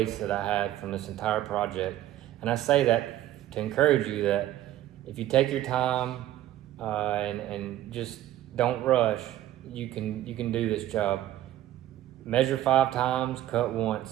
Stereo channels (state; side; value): quieter; left; 13.5 dB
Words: that I had from this entire project. And I say that to encourage you that if you take your time and just don't rush, you can do this job. Measure 5 times, cut